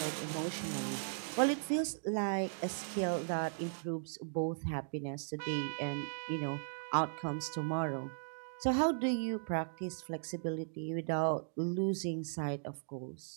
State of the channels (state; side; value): silent; left; digital silence